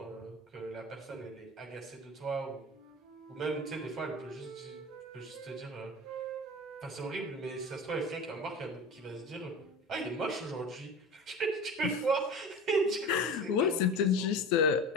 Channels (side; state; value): both; normal; correlation 0.33